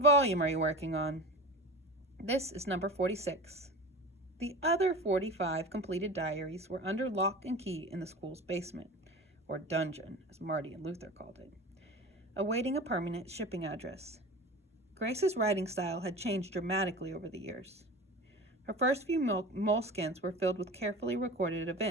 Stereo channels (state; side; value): normal; both; correlation 0.33